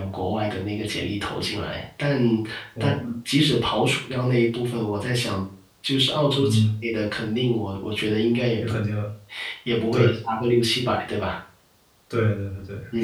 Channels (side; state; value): both; identical; correlation 1.00